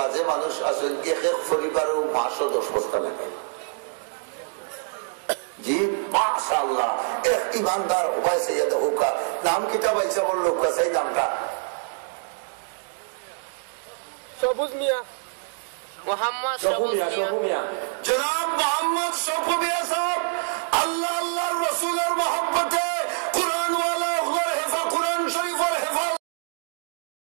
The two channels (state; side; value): silent; left; digital silence